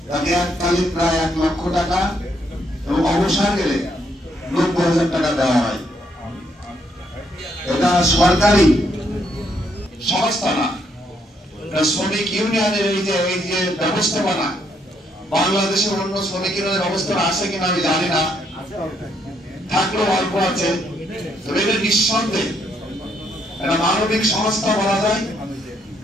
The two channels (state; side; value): normal; both; correlation 0.73